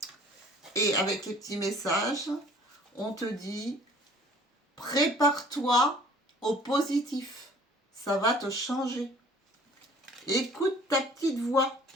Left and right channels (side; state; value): both; normal; correlation 0.52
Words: Et avec les petits messages, on te dit, prépare-toi au positif. Ça va te changer. Écoute ta petite voix.